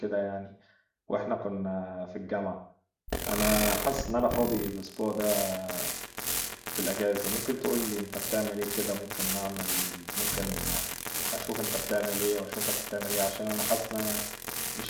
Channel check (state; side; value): identical; both; correlation 1.00